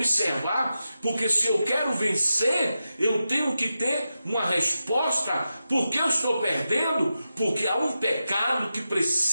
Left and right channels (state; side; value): inverted; both; correlation -0.90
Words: porque se eu quero vencer, eu tenho que ter uma resposta. Por que eu estou perdendo? Porque há um pecado que